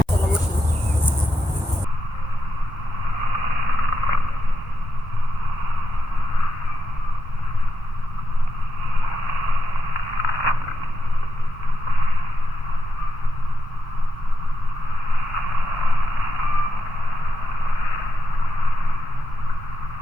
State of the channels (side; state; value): both; normal; correlation 0.85